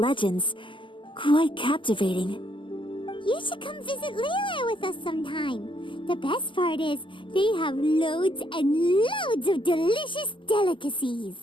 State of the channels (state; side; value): late; right; 0.25 ms